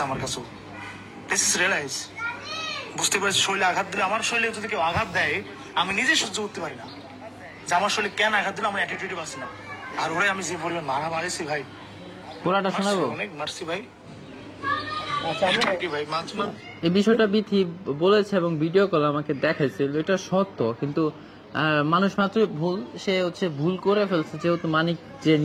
আমার কাছেও। This is realise. বুঝতে পারছি শরীরে আঘাত দিলে, আমার শরীরে যদি কেউ আঘাত দেয়, আমি নিজে সহ্য করতে পারি না যে আমার শরীরে কেন আঘাত দিলে আমার অ্যাটিটিউড পাচ্ছি না। আর ওরে আমি যে পরিমাণ মারা মারিছি ভাই, পুরাটা শোনাবো? অনেক মারছি ভাই। কি ভাই এই বিষয়টা বিথি বলেছে এবং ভিডিও কল আমাকে দেখাইছিল, এটা সত্য। কিন্তু মানুষ মাত্রই ভুল, সে হচ্ছে ভুল করে ফেলছে, যেহেতু মানিক যে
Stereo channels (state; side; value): identical; both; correlation 1.00